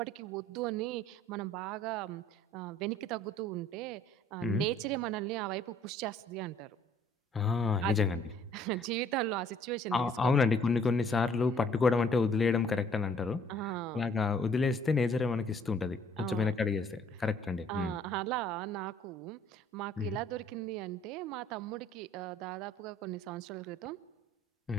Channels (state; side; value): normal; both; correlation 0.59